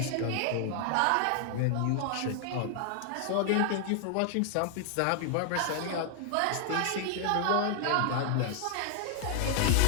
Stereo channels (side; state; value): both; different; correlation 0.00